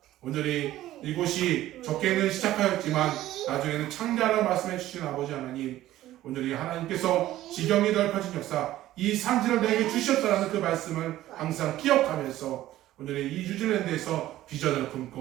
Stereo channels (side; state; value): left; quieter; 14.5 dB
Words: 온전히 이곳이 적게는 시작하였지만 나중에는 창대하라고 말씀해 주신 아버지 하나님, 온전히 하나님께서 지경이 넓혀진 역사, 이 산지를 내게 주셨다라는 그 말씀을 항상 기억하면서 온전히 이 뉴질랜드에서 비전을